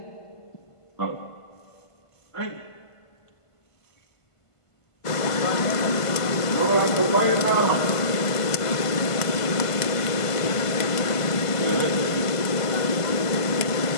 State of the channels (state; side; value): late; right; 1.5 ms